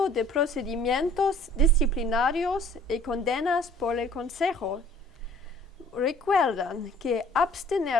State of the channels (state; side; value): normal; both; correlation 0.52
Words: de procedimientos disciplinarios y condenas por el Consejo. Recuerdan que